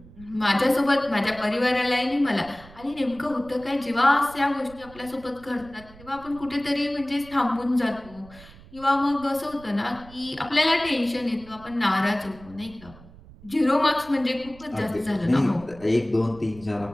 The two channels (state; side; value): noise; right; rumble, 21 dB below the sound